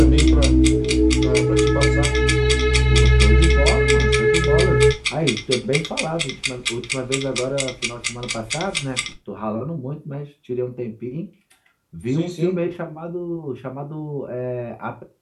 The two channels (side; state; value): both; identical; correlation 1.00